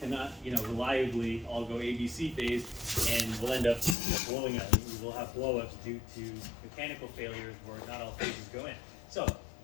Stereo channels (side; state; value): right; drops out; at 4.0 s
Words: reliably all go ABC phase, and we'll end up blowing up. We'll have blowups due to mechanical failures where not all phases go in. So